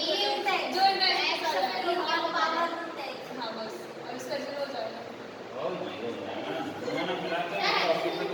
जो हाँ बस, और इसका 0 हो जाएगा। ओ ये हो जाएगा ना, दोनों मिला के ऑफिस में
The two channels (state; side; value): identical; both; correlation 1.00